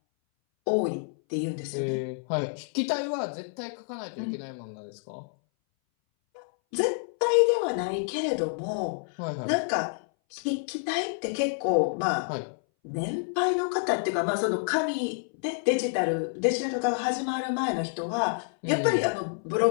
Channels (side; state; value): right; silent; 59 dB below the other